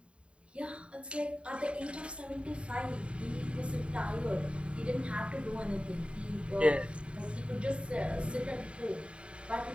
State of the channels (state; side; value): late; left; 0.058 ms